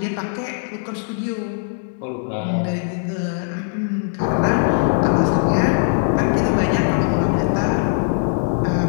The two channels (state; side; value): silent; right; digital silence